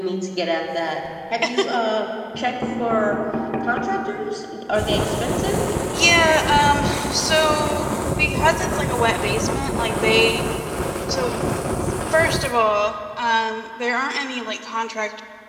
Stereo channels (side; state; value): both; identical; correlation 1.00